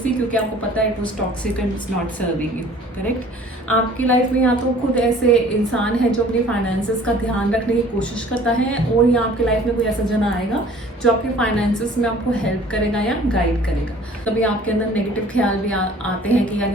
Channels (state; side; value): normal; both; correlation 0.51